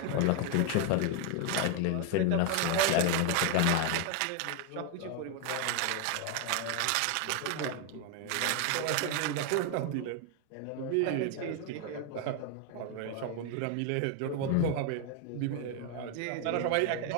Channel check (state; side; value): different; both; correlation 0.01